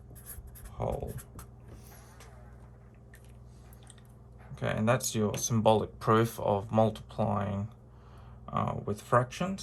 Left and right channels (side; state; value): both; identical; correlation 1.00